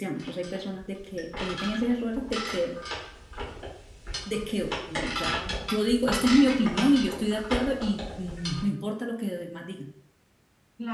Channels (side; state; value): both; identical; correlation 1.00